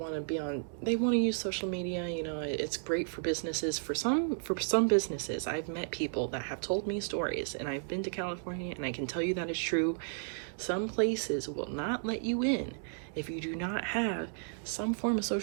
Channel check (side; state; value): left; silent; digital silence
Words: to use social media, you know. It's great for businesses. For some businesses, I've met people that have told me stories, and I've been to California and I can tell you that it's true. Some places will not let you in if you do not have some form of